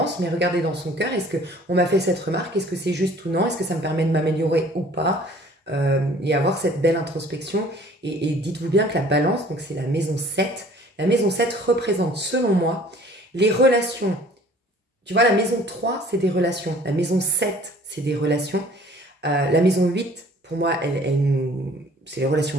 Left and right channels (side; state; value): both; normal; correlation 0.52